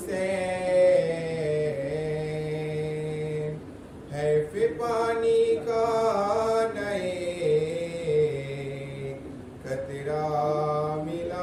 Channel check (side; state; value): both; identical; correlation 1.00